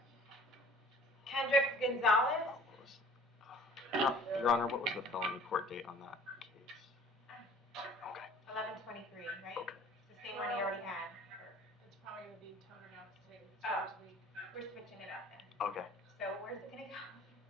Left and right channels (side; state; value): both; normal; correlation 0.50